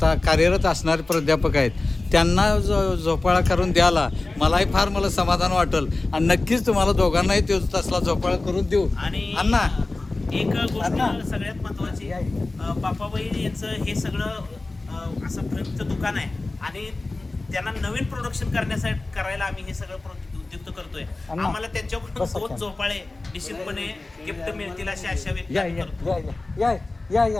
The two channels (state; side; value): quieter; right; 3.2 dB